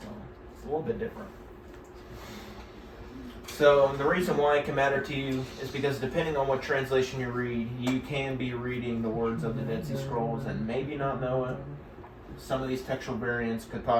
So it's a little bit different. So the reason why it can matter to you is because depending on what translation you read, you can be reading the words of the Dead Sea Scrolls and maybe not know it. Some of these textual variants could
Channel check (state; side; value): identical; both; correlation 1.00